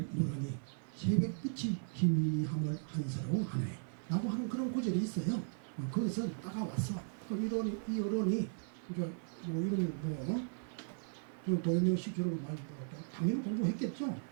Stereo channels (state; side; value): silent; left; 53 dB below the other